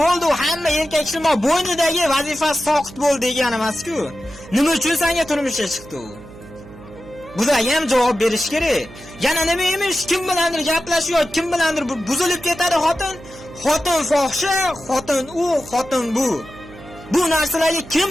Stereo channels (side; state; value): right; noise; hum, 18 dB below the sound